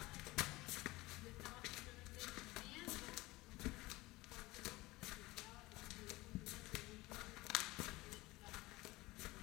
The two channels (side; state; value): right; quieter; 20.5 dB